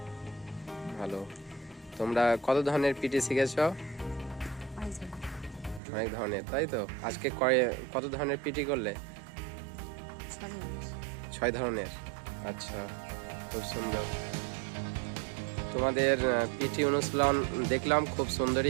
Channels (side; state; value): left; drops out; at 5.8 s